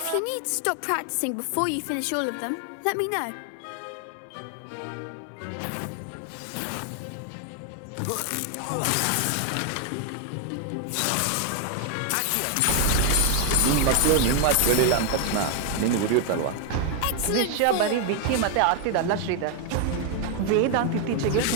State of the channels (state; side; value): different; both; correlation 0.01